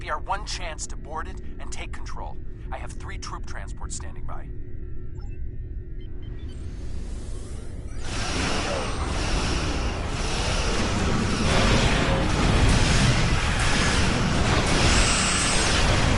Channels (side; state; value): both; identical; correlation 1.00